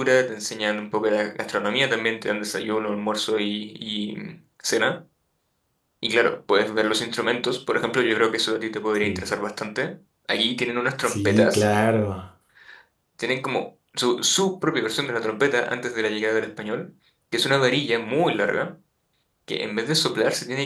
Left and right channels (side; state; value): both; identical; correlation 1.00